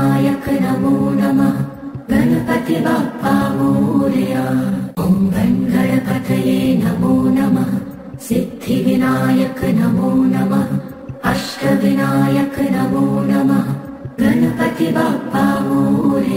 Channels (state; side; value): identical; both; correlation 1.00